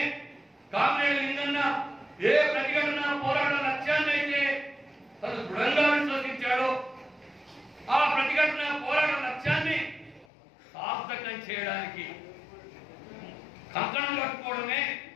కామ్రేడ్ లింగన్న ఏ ప్రతిఘటన పోరాట లక్ష్యాన్ని అయితే తను దృఢంగా విశ్వసించాడో, ఆ ప్రతిఘటన పోరాట లక్ష్యాన్ని సార్థకం చేయడానికి కంకణం కట్టుకోవడమే,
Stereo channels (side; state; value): right; drops out; at 10.2 s